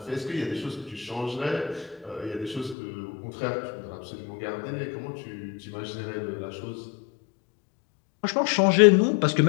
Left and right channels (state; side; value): drops out; right; at 2.8 s